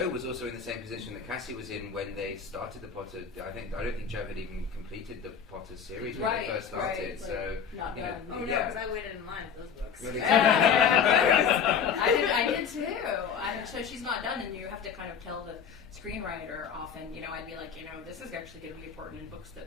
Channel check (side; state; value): right; quieter; 7.0 dB